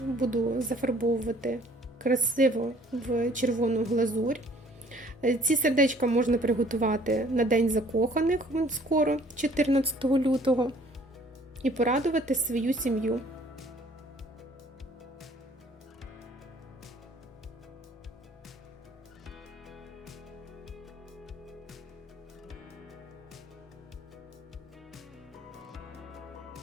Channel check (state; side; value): normal; both; correlation 0.57